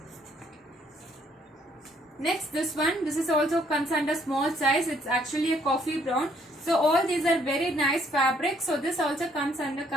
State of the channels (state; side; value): normal; both; correlation 0.66